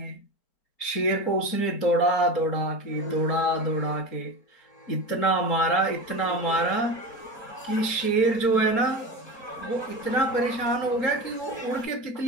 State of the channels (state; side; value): late; right; 4.4 ms